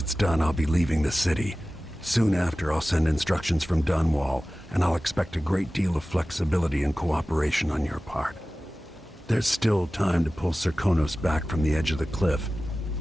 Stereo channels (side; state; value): both; normal; correlation 0.96